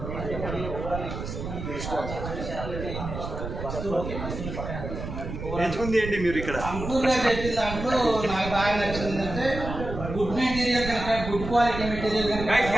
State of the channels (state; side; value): noise; right; rumble, 7 dB below the sound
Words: ఎంచుకుంది ఏంటి మీరు ఇక్కడ? అంకుర్గా చెప్పిన దాంట్లో నాకు బాగా నచ్చింది ఏంటంటే గుడ్ మెటీరియల్ కనుక, గుడ్ క్వాలిటీ మెటీరియల్ కనుక